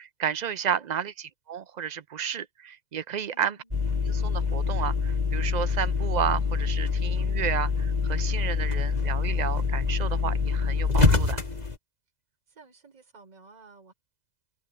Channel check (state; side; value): late; left; 2.0 ms